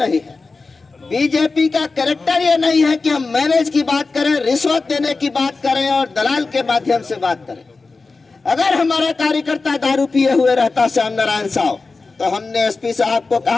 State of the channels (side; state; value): right; quieter; 3.9 dB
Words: है, बीजेपी का कैरेक्टर ये नहीं है कि हम मैनेज की बात करें, रिश्वत देने की बात करें और दलाल के माध्यम से बात करें। अगर हमारा कार्यकर्ता दारू पिए हुए रहता श्याम नारायण साहब, तो हमने एसपी साहब को